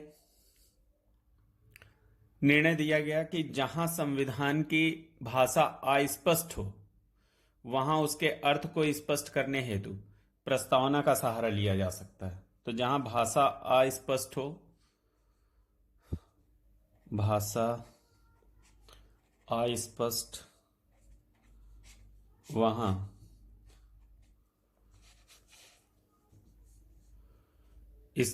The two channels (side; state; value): both; identical; correlation 1.00